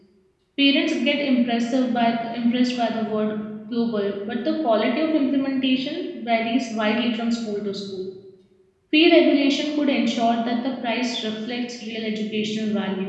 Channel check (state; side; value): identical; both; correlation 1.00